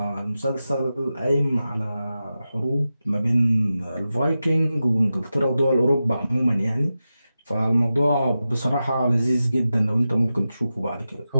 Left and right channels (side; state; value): both; inverted; correlation -0.92